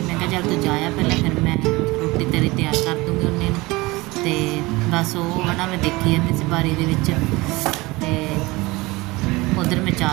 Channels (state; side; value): quieter; left; 22.0 dB